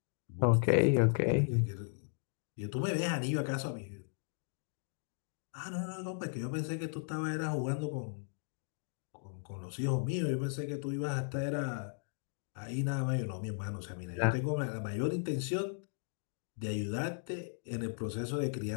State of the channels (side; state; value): right; silent; digital silence